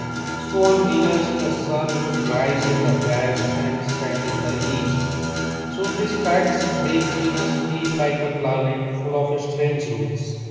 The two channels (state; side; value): identical; both; correlation 1.00